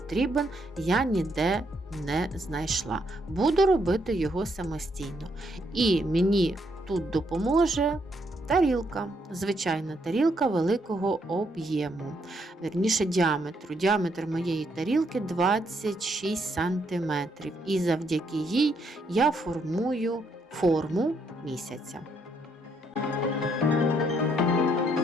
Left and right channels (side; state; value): both; normal; correlation 0.74